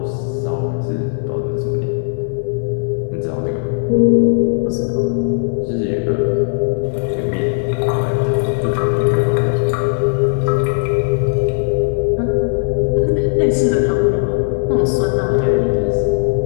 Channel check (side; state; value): right; silent; digital silence